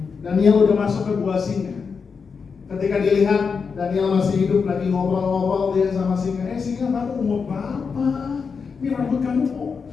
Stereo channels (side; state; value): right; quieter; 5.5 dB